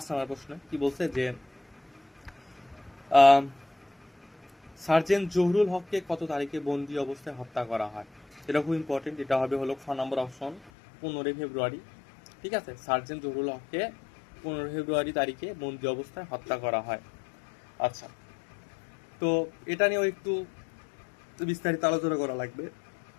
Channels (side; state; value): right; drops out; at 10.7 s